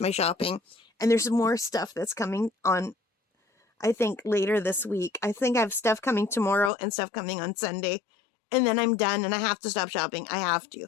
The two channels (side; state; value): right; drops out; at 6.7 s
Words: shopping. And there's more stuff that's coming on, I think, later this week. I think I have stuff coming tomorrow and stuff coming on Sunday. And then I'm done and I have to stop shopping. I have to.